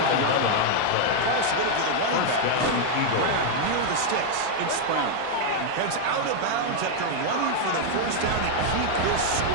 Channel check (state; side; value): different; both; correlation 0.00